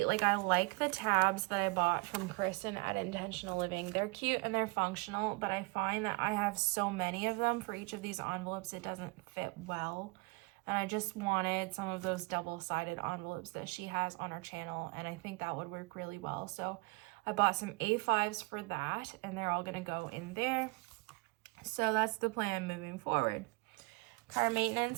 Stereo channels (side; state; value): left; quieter; 26.4 dB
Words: the tabs that I bought from Kristen at Intentional Living. They're cute and they're functional, but I find that I have so many of them for each of these envelopes, it doesn't fit well. And I just wanted some of those double-sided envelopes that she has on her channel, and I think that would work really well. So I bought some A5s for that, and they're all gonna go in there. So that's the plan moving forward. Car